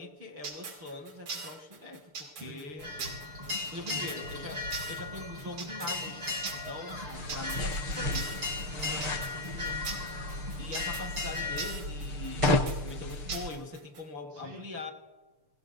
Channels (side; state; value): left; late; 6.7 ms